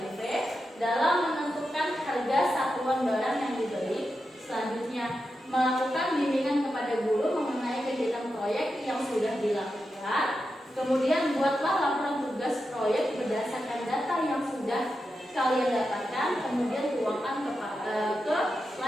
dalam menentukan harga satuan barang yang dibeli. Selanjutnya melakukan bimbingan kepada guru mengenai kegiatan proyek yang sudah dilakukan. Kemudian buatlah laporan tugas proyek berdasarkan data yang sudah kalian dapatkan. Kemudian tuangkan ke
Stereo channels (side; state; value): both; normal; correlation 0.89